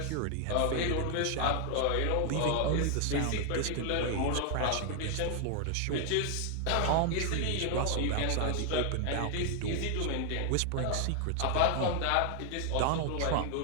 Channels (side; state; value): both; different; correlation 0.00